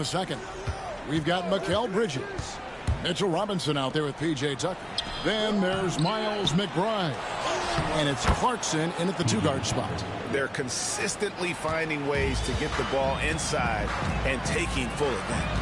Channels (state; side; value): identical; both; correlation 1.00